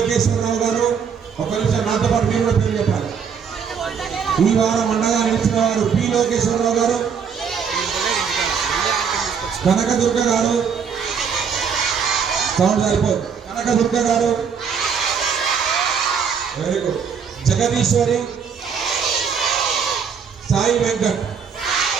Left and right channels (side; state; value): left; quieter; 6.7 dB